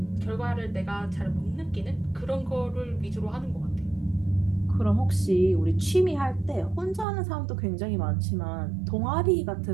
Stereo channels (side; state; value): left; drops out; at 7.1 s